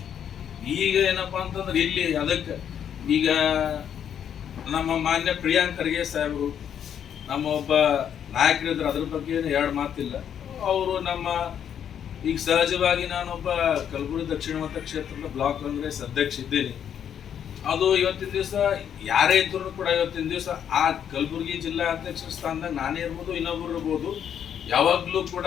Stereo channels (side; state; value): right; quieter; 8.9 dB